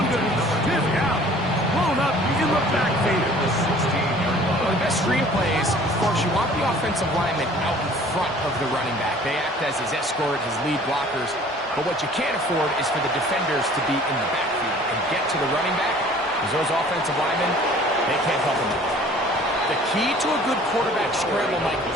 going to stiff out. Blown up in the backfield. Well, the best screen plays, of course, you want the offensive lineman out in front of the running back. They act as his escort, his lead blockers. But what you can't afford is for the defenders to be in the backfield and get to the running back, because those offensive linemen, they can't help them out. The key to a good quarterback scramble, Mike,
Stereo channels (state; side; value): normal; both; correlation 0.51